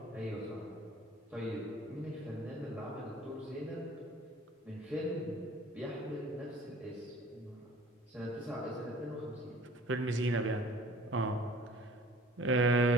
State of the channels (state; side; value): normal; both; correlation 0.50